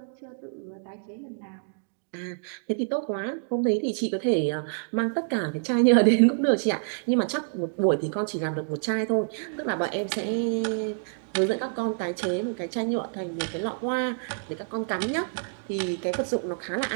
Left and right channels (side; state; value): left; silent; digital silence